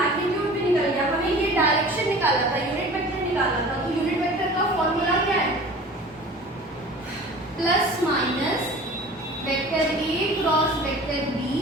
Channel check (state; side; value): normal; both; correlation 0.42